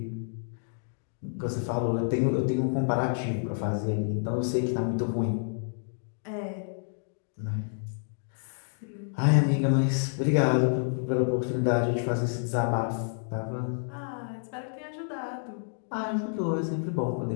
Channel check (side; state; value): right; silent; digital silence